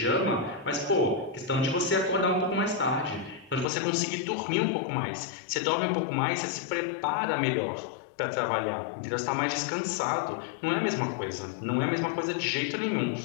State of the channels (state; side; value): drops out; right; at 3.7 s